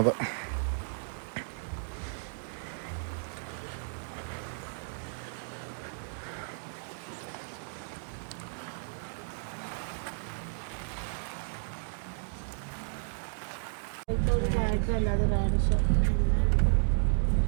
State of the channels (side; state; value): left; silent; digital silence